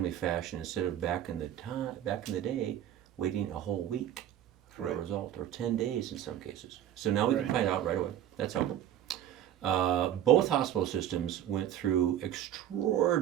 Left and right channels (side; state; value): left; quieter; 11.2 dB